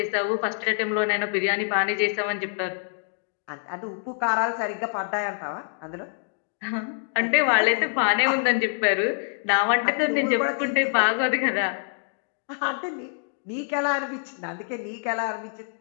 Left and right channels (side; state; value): right; silent; digital silence